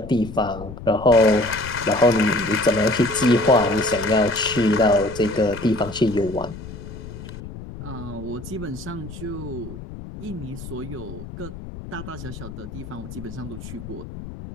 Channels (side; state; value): left; noise; rumble, 12 dB below the sound